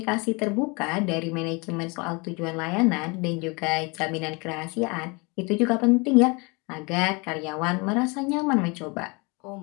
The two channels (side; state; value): right; quieter; 28.9 dB